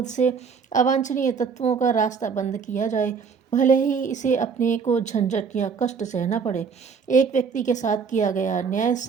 से अवांछनीय तत्वों का रास्ता बंद किया जाए, भले ही इसे अपने को झंझट या कष्ट सहना पड़े। एक व्यक्ति के साथ किया गया अन्याय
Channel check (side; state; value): left; quieter; 5.8 dB